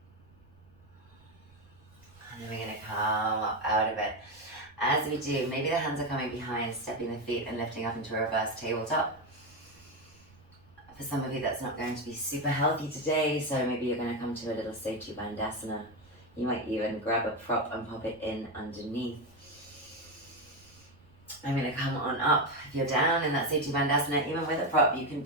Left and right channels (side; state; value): right; noise; rumble, 26 dB below the sound